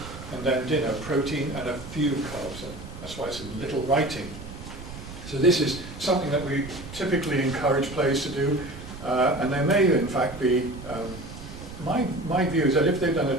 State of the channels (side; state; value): right; noise; rumble, 12 dB below the sound